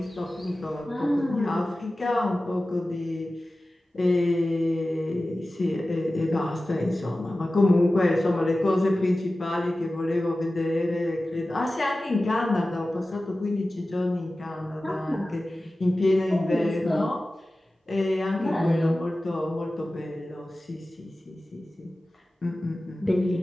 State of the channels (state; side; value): normal; both; correlation 0.96